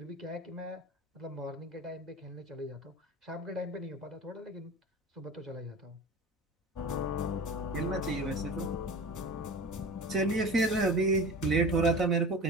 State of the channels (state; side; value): normal; both; correlation 0.35